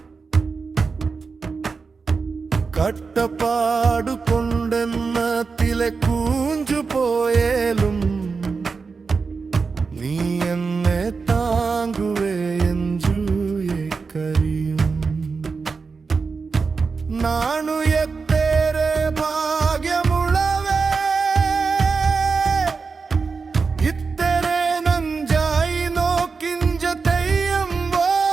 കട്ടപ്പാടു കൊണ്ടെന്നത്തിലെ കൂഞ്ചു പോയേലും നീ എന്നെ താങ്ങുവേ എഞ്ചു കരിയും നാണു എത്തേരെ ഭാഗ്യമുള്ളവേ ഇത്തരെ നഞ്ചായി നോക്കിഞ്ച തെയ്യം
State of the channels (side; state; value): left; quieter; 4.8 dB